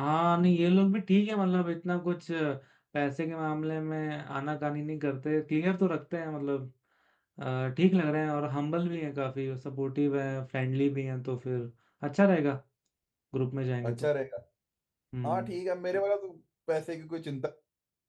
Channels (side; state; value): both; identical; correlation 1.00